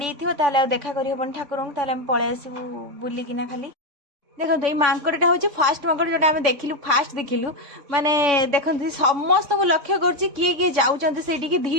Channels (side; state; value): left; late; 3.5 ms